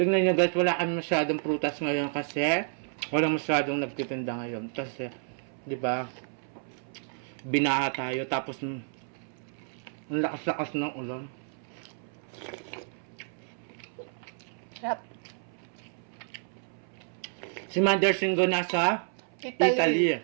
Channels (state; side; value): silent; left; 58 dB below the other